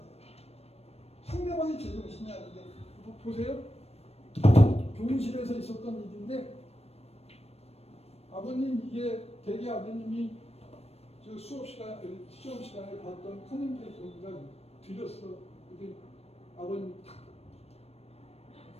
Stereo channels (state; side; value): late; right; 0.30 ms